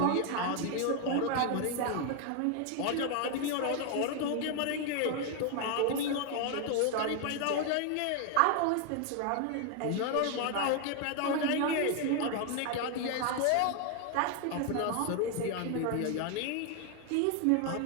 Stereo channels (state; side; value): different; both; correlation 0.00